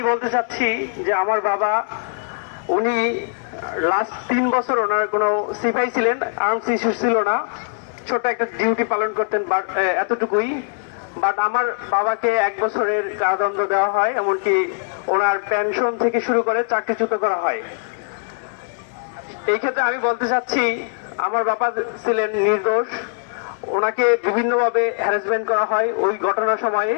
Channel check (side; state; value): right; silent; 65 dB below the other